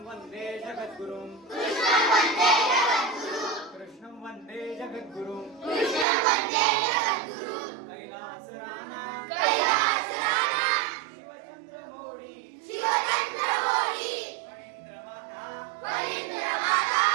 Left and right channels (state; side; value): drops out; left; at 6.1 s